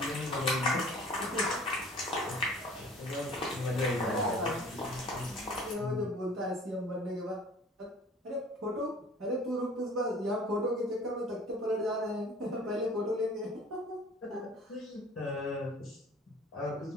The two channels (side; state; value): both; normal; correlation 0.48